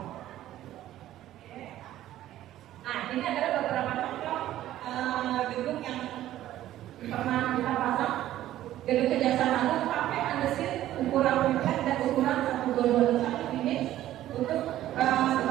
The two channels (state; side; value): quieter; left; 13.5 dB